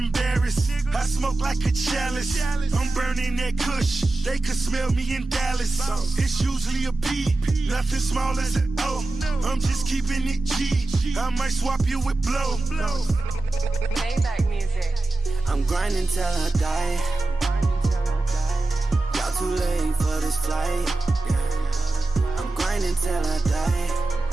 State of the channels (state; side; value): quieter; left; 3.0 dB